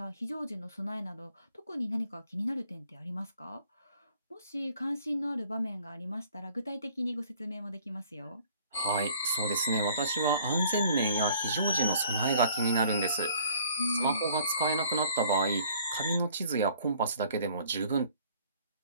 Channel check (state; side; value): inverted; both; correlation -0.57